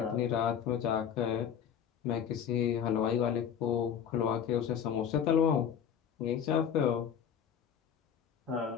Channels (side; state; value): right; quieter; 8.4 dB